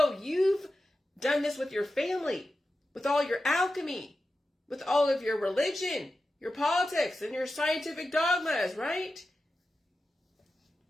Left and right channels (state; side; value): normal; both; correlation 0.92